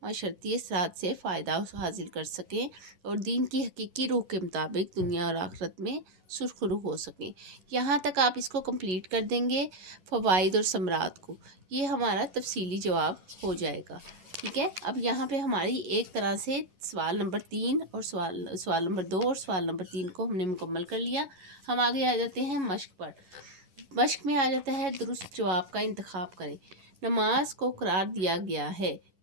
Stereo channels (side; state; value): left; late; 11 ms